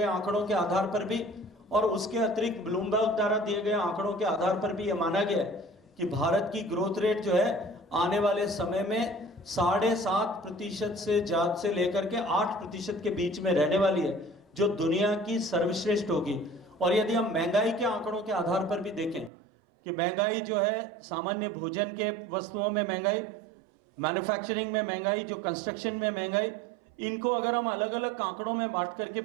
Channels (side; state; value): left; drops out; at 19.3 s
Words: आंकड़ों के आधार पर भी, और उसके अतिरिक्त ब्लूमबर्ग द्वारा दिए गए आंकड़ों के आधार पर भी यह माना गया है कि भारत की ग्रोथ रेट जो है आने वाले समय में 7.5% से लेकर के 8% के बीच में रहने वाली है, जो दुनिया की सर्वश्रेष्ठ होगी। और यदि हम महंगाई के आंकड़ों के आधार पर भी देखें कि महंगाई जो है, सामान्य भोजन के वस्तुओं में महंगाई, मैन्युफैक्चरिंग में महंगाई, जो कंस्ट्रक्शन में महंगाई, इनको अगर हम अलग अलग आंकड़ों में बांट करके